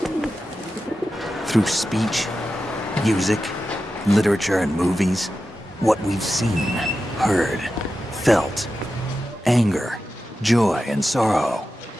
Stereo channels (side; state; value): both; normal; correlation 0.92